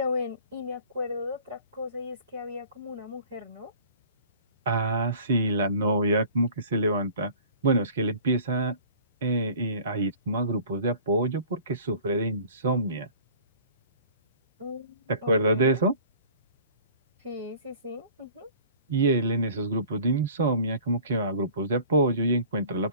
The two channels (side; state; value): both; inverted; correlation -0.48